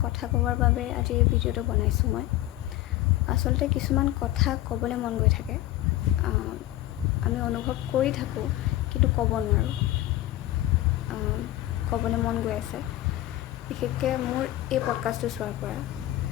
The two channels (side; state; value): right; quieter; 15.4 dB